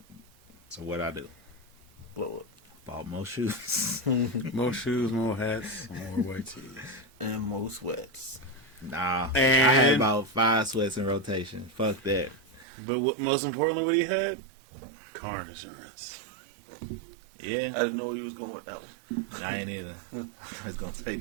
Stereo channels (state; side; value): drops out; left; at 12.7 s